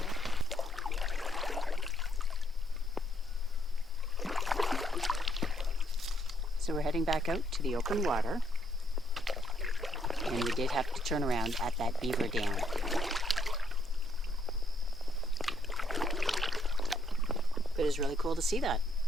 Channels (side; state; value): both; normal; correlation 0.71